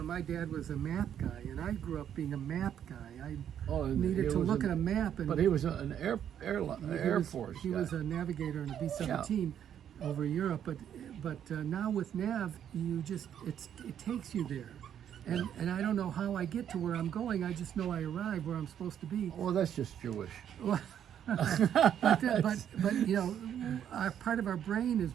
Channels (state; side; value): quieter; left; 9.5 dB